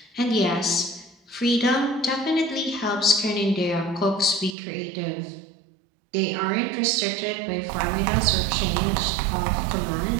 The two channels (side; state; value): left; drops out; at 4.5 s